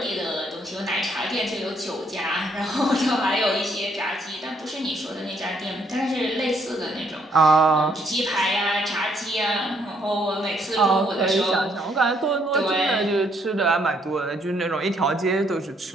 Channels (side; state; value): both; normal; correlation 0.70